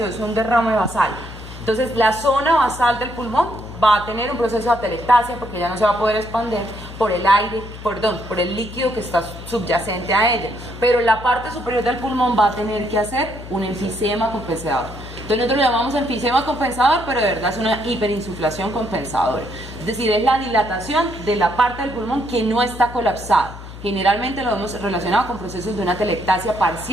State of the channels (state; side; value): noise; left; hum, 13 dB below the sound